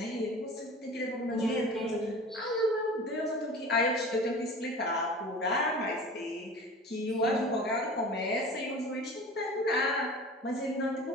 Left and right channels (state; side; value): normal; both; correlation 0.38